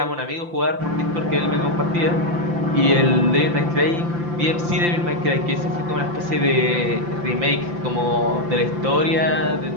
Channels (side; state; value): left; late; 5.8 ms